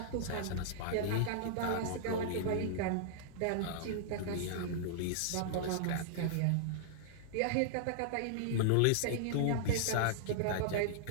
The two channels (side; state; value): both; different; correlation -0.02